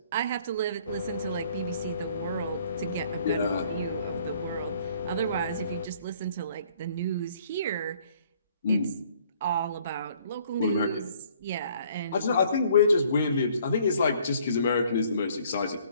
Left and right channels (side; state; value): both; inverted; correlation -0.60